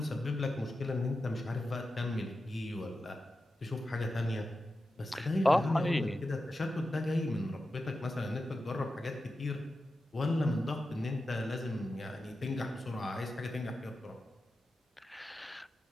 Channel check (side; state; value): both; normal; correlation 0.91